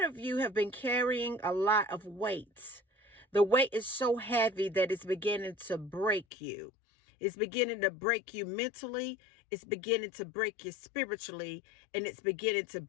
of you have been carrying a lot of weight. The weight is so heavy that it's beginning to break you. It's beginning to break you mentally. It's beginning to break you spiritually. And it's beginning to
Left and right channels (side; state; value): right; drops out; at 6.2 s